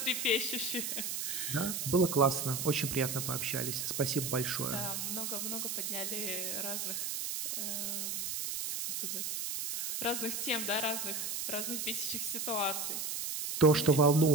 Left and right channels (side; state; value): right; noise; hiss, 3 dB below the sound